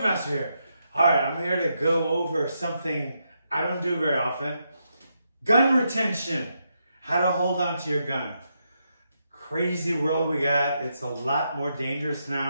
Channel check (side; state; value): both; inverted; correlation -0.81